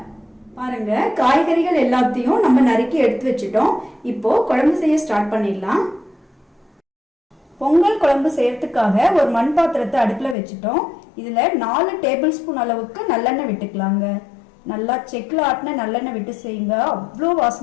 பாருங்க, காய்கறிகள் எல்லாத்தையும் நம்ம நறுக்கி எடுத்து வச்சுட்டோம். இப்போ குழம்பு செய்ய ஸ்டார்ட் பண்ணிடலாம். பொங்கல் குழம்பு செய்யறதுக்காக ஒரு மண் பாத்திரத்தை அடுப்புல வச்சுட்டோம். இதுல 4 டேபிள் ஸ்பூன் அளவுக்கு நல்லெண்ணெய் விட்டுக்கலாங்க. நல்லா செக்கில் ஆட்டின நல்லெண்ணெய் விட்டு செய்யுங்க, அவ்வளோ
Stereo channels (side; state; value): right; drops out; at 10.4 s